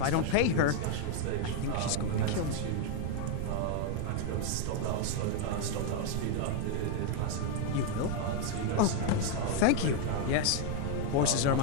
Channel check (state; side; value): different; both; correlation 0.01